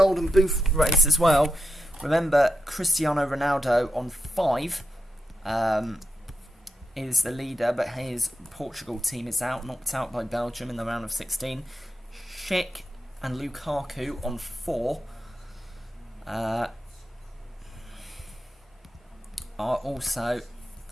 Boot race as well. Remember, Cristiano Ronaldo on 5... is the leader, but his Portugal team is knocked out by Belgium in the round of 16. Schick and Lukaku on 4 are also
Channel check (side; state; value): both; normal; correlation 0.87